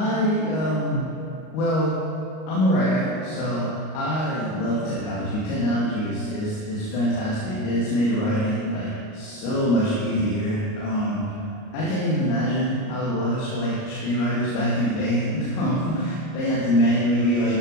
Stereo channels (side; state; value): right; late; 38 ms